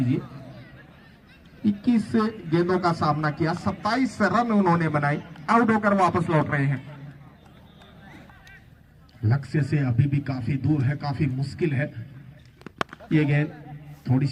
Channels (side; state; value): both; identical; correlation 1.00